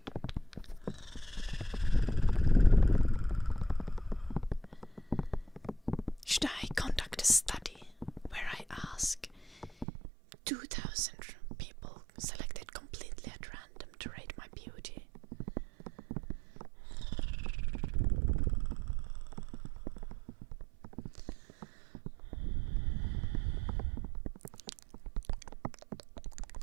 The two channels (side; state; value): left; drops out; at 9.9 s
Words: Should I conduct a study where I ask 2,000 people selected completely at random to rate my beauty?